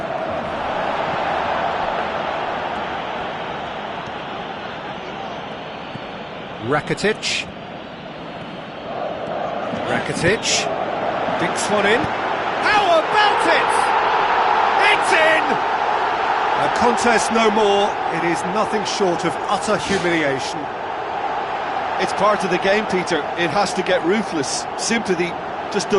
Rakitic. Dinks one in. How about it? It's in! A contest no more. It is nothing short of utter humiliation. It's part of the game, Peter. It has to get ruthless. Sympathy just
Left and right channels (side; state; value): both; identical; correlation 1.00